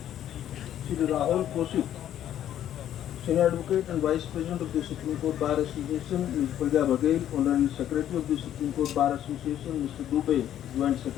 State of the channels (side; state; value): right; quieter; 11.1 dB